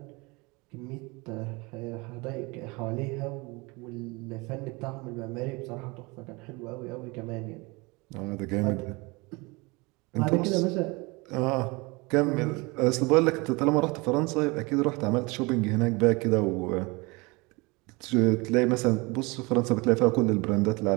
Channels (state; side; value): quieter; left; 26.0 dB